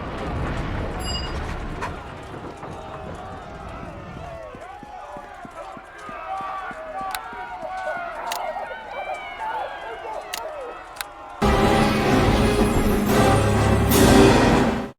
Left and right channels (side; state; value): both; identical; correlation 1.00